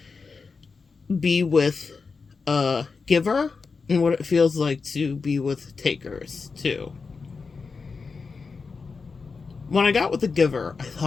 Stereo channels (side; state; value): right; quieter; 4.7 dB